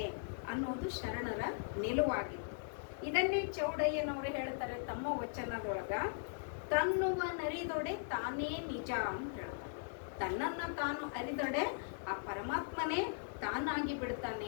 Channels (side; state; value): right; silent; digital silence